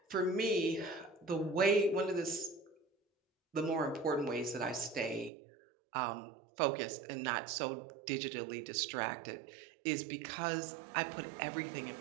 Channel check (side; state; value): left; drops out; at 5.3 s